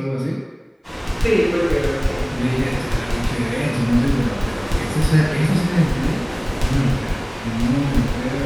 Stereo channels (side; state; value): both; identical; correlation 1.00